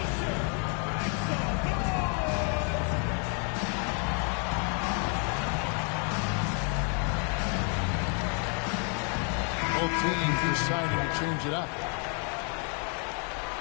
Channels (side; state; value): right; quieter; 39.5 dB